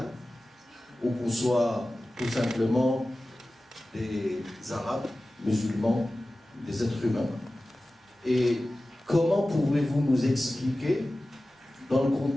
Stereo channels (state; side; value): normal; both; correlation 0.96